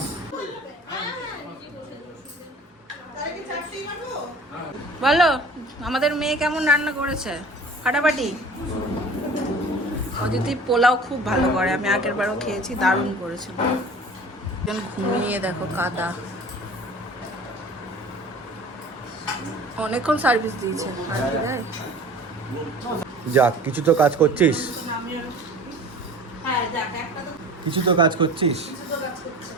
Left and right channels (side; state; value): both; normal; correlation 0.43